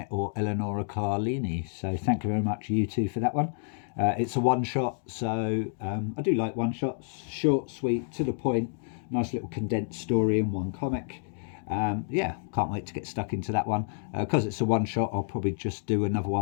or Eleonora Carlini. So thank you very much, you two, for that one. It's a one-shot, so I do like one-shots. Short, sweet, to the point, nice little condensed story in one comic. Yeah, can't wait to get stuck into that one. Because it's a one-shot, I'll probably just do another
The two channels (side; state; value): right; silent; digital silence